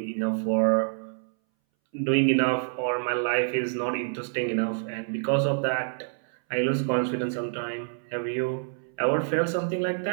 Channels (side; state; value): left; silent; 60 dB below the other